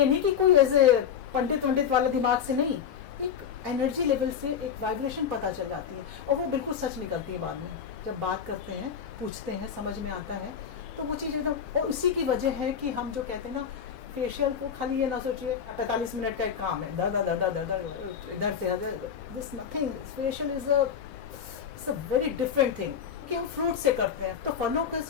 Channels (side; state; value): right; quieter; 7.8 dB